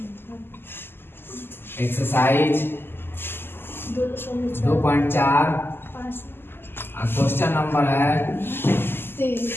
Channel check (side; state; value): right; late; 0.11 ms